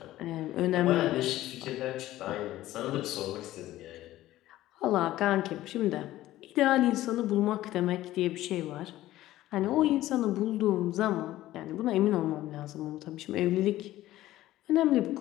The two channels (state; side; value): quieter; right; 15.1 dB